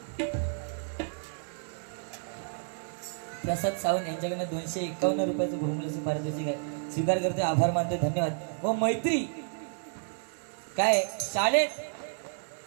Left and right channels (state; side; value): silent; left; digital silence